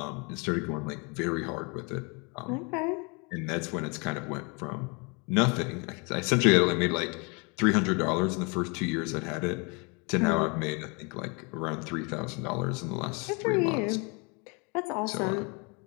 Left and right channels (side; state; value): right; quieter; 31.6 dB